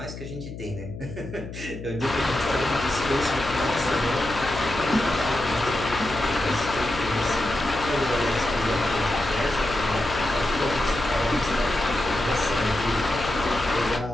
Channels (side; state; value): left; noise; hum, 11 dB below the sound